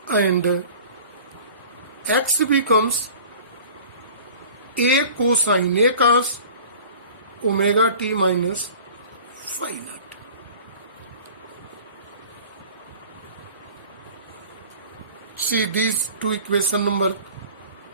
and x becomes A cosine, A cos omega t minus phi naught. See these two equation number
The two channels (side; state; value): both; inverted; correlation -0.43